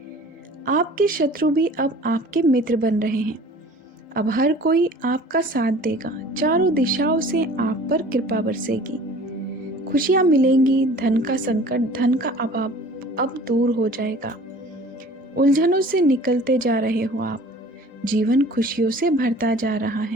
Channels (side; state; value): both; normal; correlation 0.47